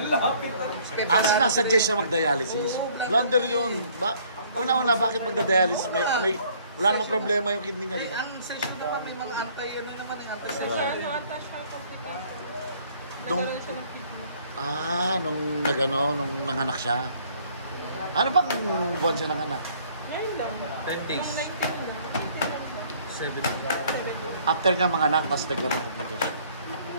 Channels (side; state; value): both; inverted; correlation -0.60